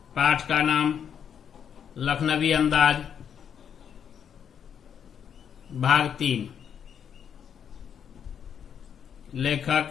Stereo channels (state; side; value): quieter; right; 8.1 dB